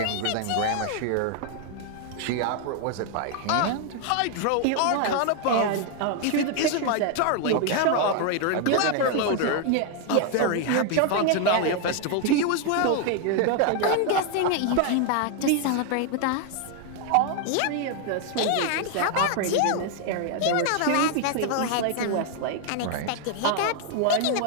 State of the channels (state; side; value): different; both; correlation 0.00